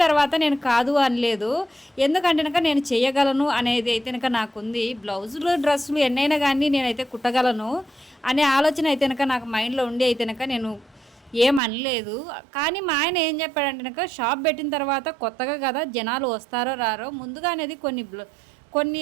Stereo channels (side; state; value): left; drops out; at 11.6 s